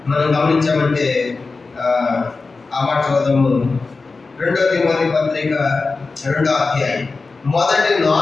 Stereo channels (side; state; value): right; quieter; 4.0 dB